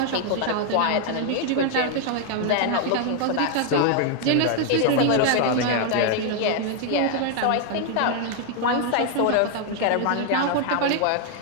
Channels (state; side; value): different; both; correlation 0.00